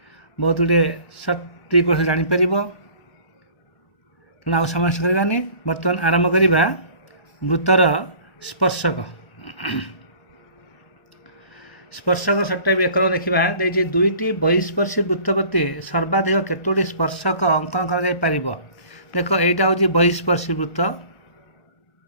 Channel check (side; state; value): right; late; 1.1 ms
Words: बहुत गुड़े सर्ट ट्रिक जापर। आउ समय करवानी बर्तमान आरंभ करवा वृत्तर स्पर्शक। स्पर्शक सर्ट टाइप एक देखा देखिए दुईटी बहिस्पर्शी वृत्त प्रति सर्वाधिक केतोटी स्पर्शक अंकन कर। देख यहाँ हूँ बहिस्पर्शी वृत्त,